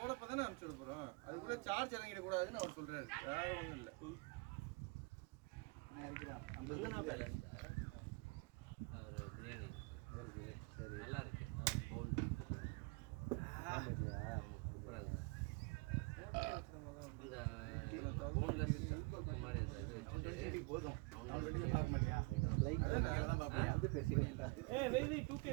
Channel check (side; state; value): left; quieter; 28.3 dB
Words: அனுப்பிச்சு விட போறோம். அதுக்குள்ள சார்ஜ் இறங்கிட கூடாதுன்னு அவர் சொல்றாரு. வேற ஒண்ணும் இல்ல. நான் இருக்கிறேன் அந்த இல்லைனா பேலன்ஸ் ஒரு பிரியாணி சரி நல்லா இருக்கு பவுல் இல்லையா சூப்பராக இருக்கு இந்த போன்லெஸ் மாதிரி அந்த இது வச்சுட்டு போதும் அவனோட பார்க்க மாட்டியா லைக் தான் பாப்பேன் வந்து பேசிக்கலாம் ஏய் வெய் 2K